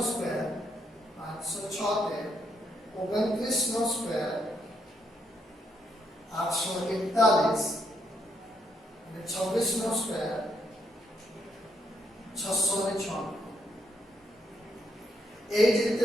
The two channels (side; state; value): both; normal; correlation 0.76